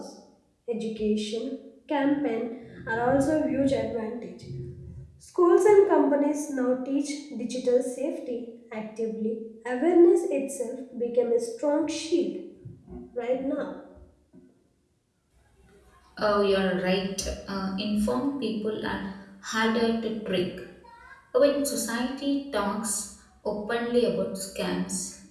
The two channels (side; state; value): both; identical; correlation 1.00